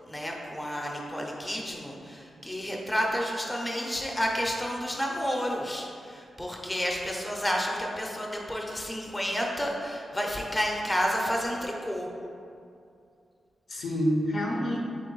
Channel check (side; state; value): both; normal; correlation 0.92